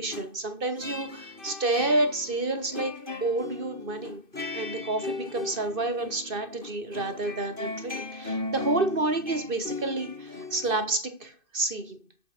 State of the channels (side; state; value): left; late; 2.6 ms